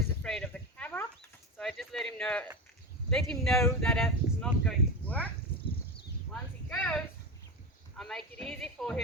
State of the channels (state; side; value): normal; both; correlation 0.21